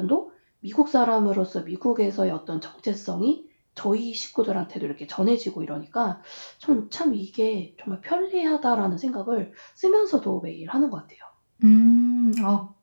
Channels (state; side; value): inverted; both; correlation -1.00